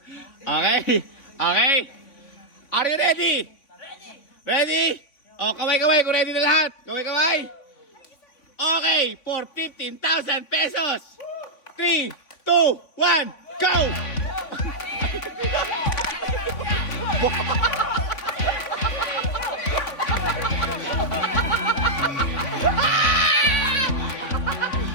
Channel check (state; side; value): late; right; 3.5 ms